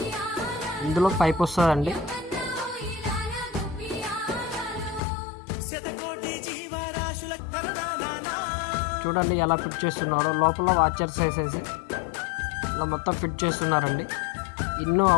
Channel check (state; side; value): drops out; right; at 5.0 s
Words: ఇందులో పైప్ వస్తుందండి. చూడండి ఎలా ఫిట్ చేస్తున్నారో. లోపల వాచర్స్ వేసేసి ఇలా మొత్తం ఫిట్ చేస్తున్నారండి. ఇన్ను